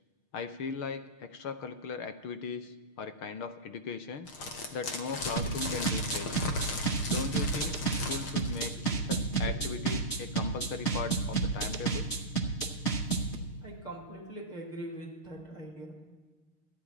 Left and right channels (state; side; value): late; right; 6.5 ms